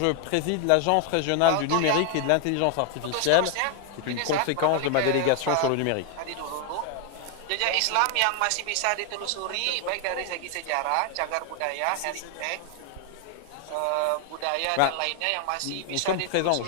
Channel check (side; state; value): both; different; correlation 0.00